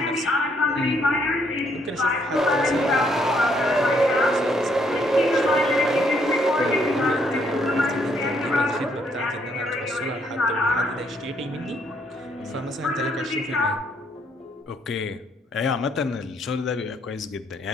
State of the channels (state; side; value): normal; both; correlation 0.70